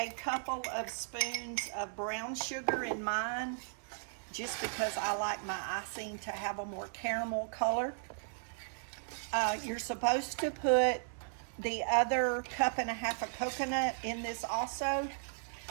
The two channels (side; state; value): left; silent; digital silence